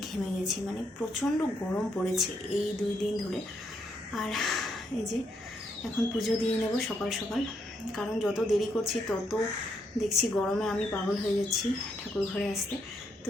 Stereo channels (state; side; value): normal; both; correlation 0.76